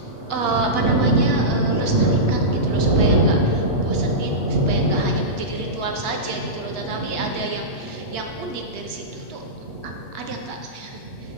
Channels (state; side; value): late; right; 8.0 ms